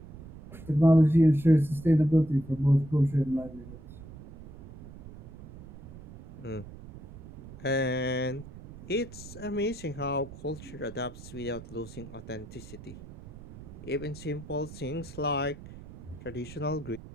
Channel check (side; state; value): right; noise; rumble, 16 dB below the sound